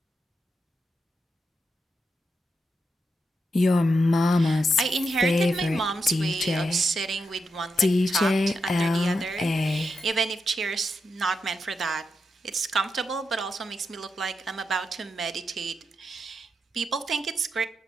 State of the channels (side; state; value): both; normal; correlation 0.85